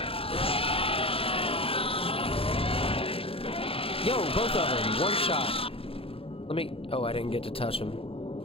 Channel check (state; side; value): late; right; 0.27 ms